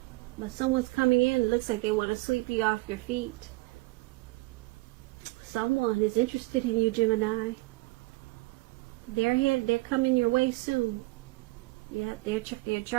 But someone's coming in. It looks like they want to sweep you off your feet. Someone is interested in you, Gemini. They're here. They're coming your way soon. Yeah, they're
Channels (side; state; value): left; quieter; 22.4 dB